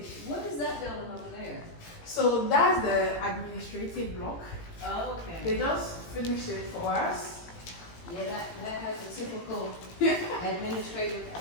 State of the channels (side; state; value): right; late; 18 ms